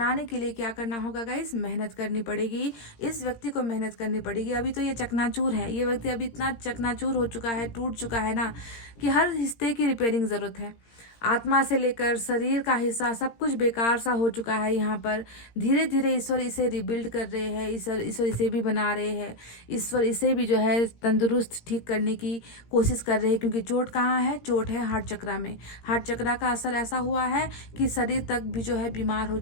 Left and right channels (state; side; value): late; right; 17 ms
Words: के लिए क्या करना होगा गाइस, मेहनत करनी पड़ेगी, इस व्यक्ति को मेहनत करनी पड़ेगी। अभी तो ये चकनाचूर है, ये व्यक्ति अभी इतना चकनाचूर हो चुका है, टूट चुका है ना, कि हर हिस्से की रिपेयरिंग ज़रूरत है। आत्मा से लेकर शरीर का हिस्सा सब कुछ बेकार सा हो चुका है यहाँ पर। धीरे धीरे ईश्वर इसे रिबिल्ड कर रहे हैं, ईश्वर इसे भी बना रहे हैं, ईश्वर इसे भी जो है तंदुरुस्त ठीक करने की कोशिश कर रहे हैं। क्योंकि चोट कहाँ है? चोट है हार्ट चक्रा में। हार्ट चक्रा का असर ऐसा हुआ है कि शरीर तक भी जो है बीमार हो